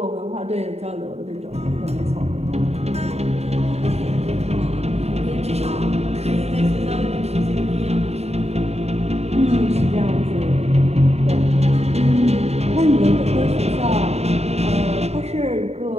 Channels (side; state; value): left; late; 0.31 ms